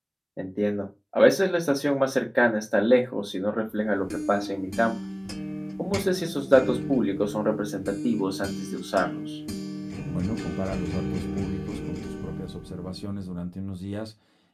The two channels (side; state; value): both; identical; correlation 1.00